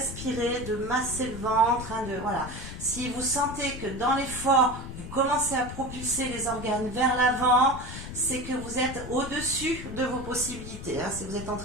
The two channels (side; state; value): left; noise; rumble, 10 dB below the sound